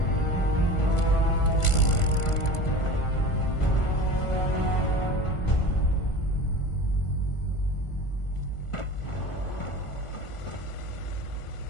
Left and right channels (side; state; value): right; late; 1.4 ms